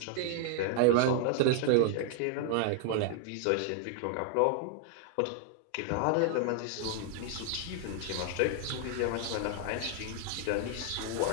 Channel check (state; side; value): different; both; correlation 0.00